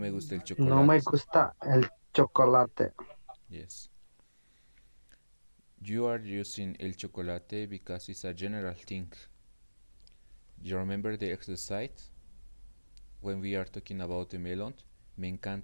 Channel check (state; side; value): inverted; both; correlation -1.00